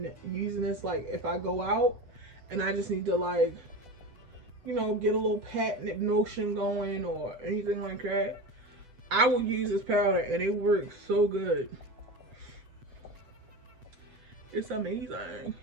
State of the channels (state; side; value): late; left; 8.1 ms